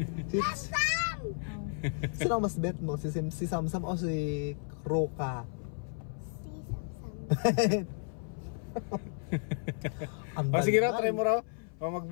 Samsam! Sino ang mas bet mo? Si Samsam o si Roka? Si Samsam. O sige raw, try mo raw. O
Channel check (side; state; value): right; silent; 56 dB below the other